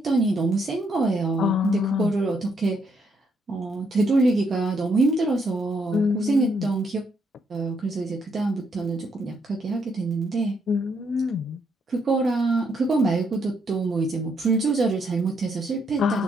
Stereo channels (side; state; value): both; normal; correlation 0.74